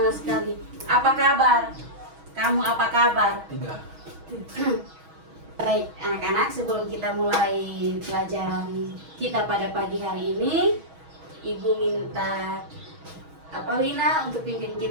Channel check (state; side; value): late; left; 6.3 ms